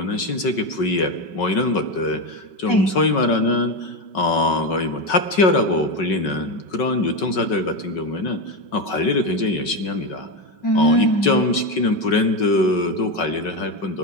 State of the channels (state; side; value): late; right; 5.3 ms